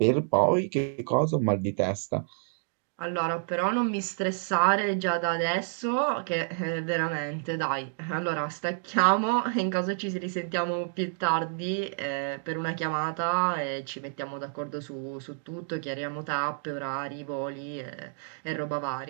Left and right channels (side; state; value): left; silent; digital silence